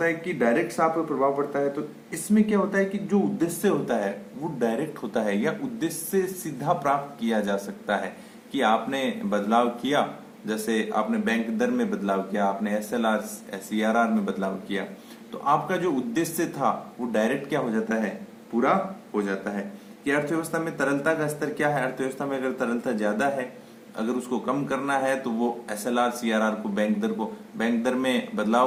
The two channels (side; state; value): both; identical; correlation 1.00